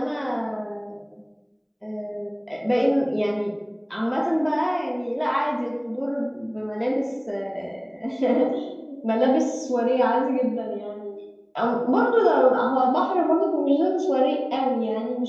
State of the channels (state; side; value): identical; both; correlation 1.00